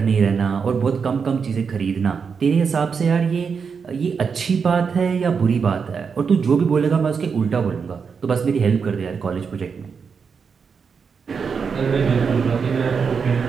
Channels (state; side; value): quieter; left; 5.9 dB